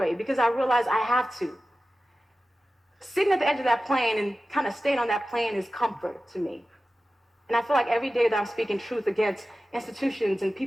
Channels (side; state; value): both; normal; correlation 0.95